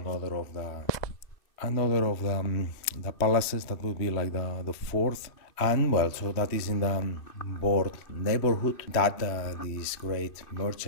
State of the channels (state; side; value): late; right; 3.0 ms